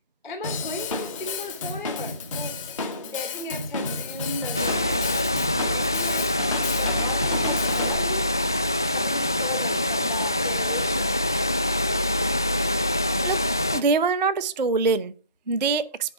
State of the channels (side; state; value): both; inverted; correlation -0.50